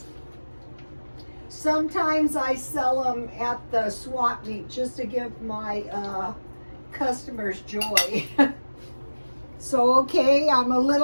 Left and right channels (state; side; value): inverted; both; correlation -1.00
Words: Sometimes I sell them at the swap meet just to give my customers joy. So okay, I'm a